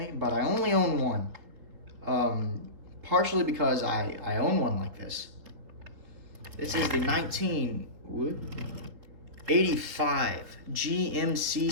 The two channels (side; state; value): left; late; 3.9 ms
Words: but I only own one. Partially because I own one like this. This is the 1985 GMC